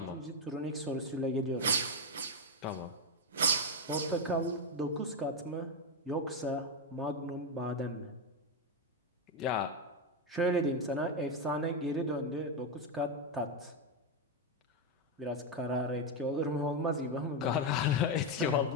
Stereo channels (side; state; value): both; normal; correlation 0.05